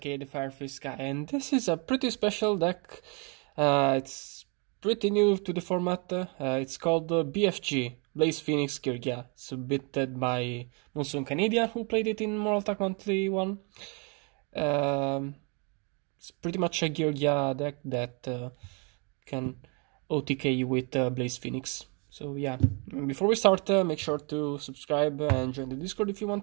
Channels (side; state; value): left; quieter; 34.0 dB